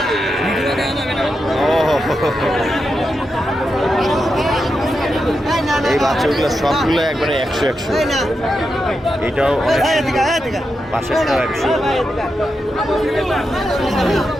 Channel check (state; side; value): normal; both; correlation 0.87